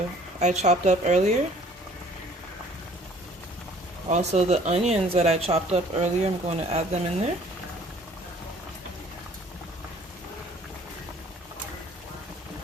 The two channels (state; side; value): normal; both; correlation 0.55